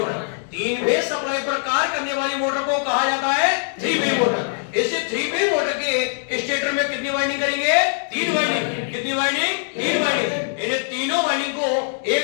3 फेज सप्लाई पर कार्य करने वाली मोटर को कहा जाता है 3 फेज मोटर। इस 3 फेज मोटर के स्टेटर में कितनी वाइंडिंग करेंगे? 3 वाइंडिंग। कितनी वाइंडिंग? 3 वाइंडिंग। इन तीनों वाइंडिंग को एक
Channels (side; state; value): right; silent; digital silence